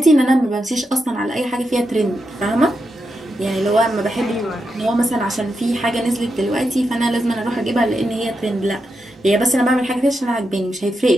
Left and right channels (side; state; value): both; normal; correlation 0.86